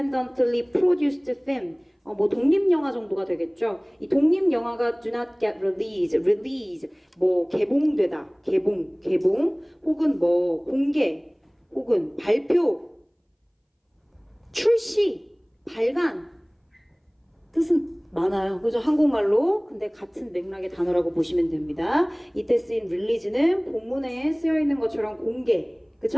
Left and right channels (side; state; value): both; identical; correlation 1.00